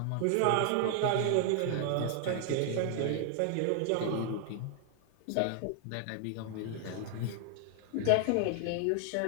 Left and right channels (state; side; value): different; both; correlation 0.00